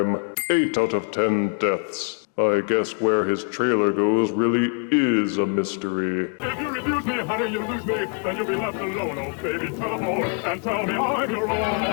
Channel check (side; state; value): right; quieter; 39.2 dB